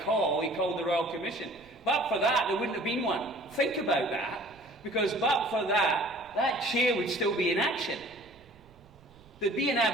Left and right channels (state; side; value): noise; right; rumble, 27 dB below the sound